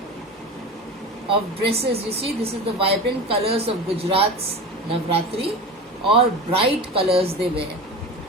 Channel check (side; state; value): both; normal; correlation 0.30